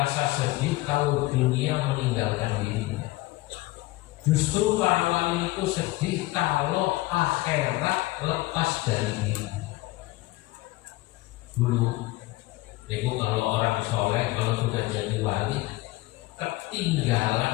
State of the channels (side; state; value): right; quieter; 19.6 dB